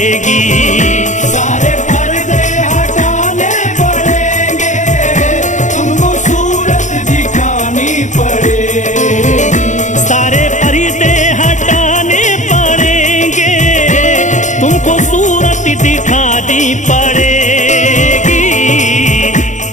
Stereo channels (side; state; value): right; late; 0.35 ms